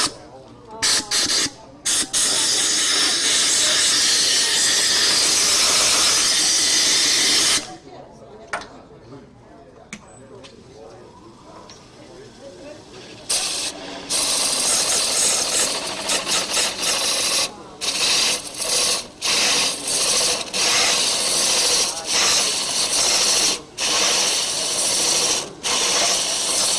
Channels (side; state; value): both; identical; correlation 1.00